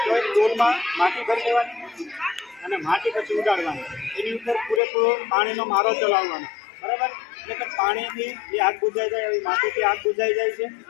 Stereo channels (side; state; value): right; drops out; at 4.8 s